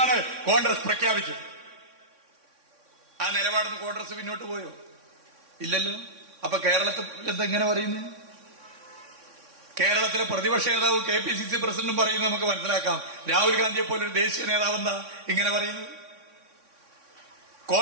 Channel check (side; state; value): left; late; 3.6 ms